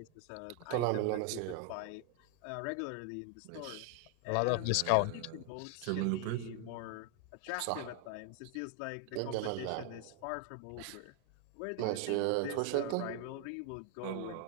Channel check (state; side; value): different; both; correlation 0.00